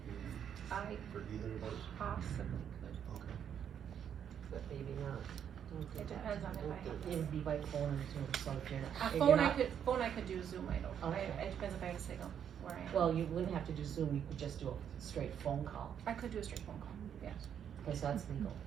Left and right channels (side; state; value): left; quieter; 8.7 dB